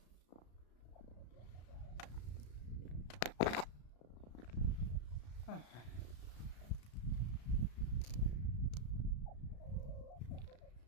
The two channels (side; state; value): right; late; 33 ms